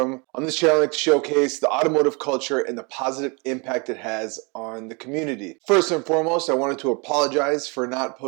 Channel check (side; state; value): left; quieter; 31.0 dB